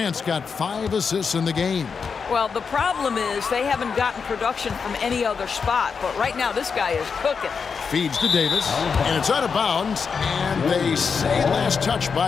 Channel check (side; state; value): right; quieter; 5.7 dB